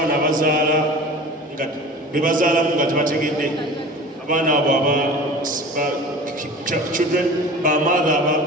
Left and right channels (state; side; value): normal; both; correlation 0.38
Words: abazaala nga be bazaalamu nga tebategedde abaana abo children ba mother